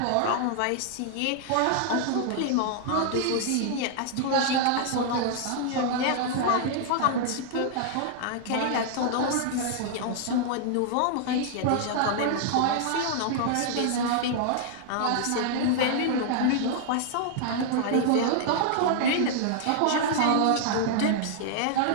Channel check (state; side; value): different; both; correlation -0.01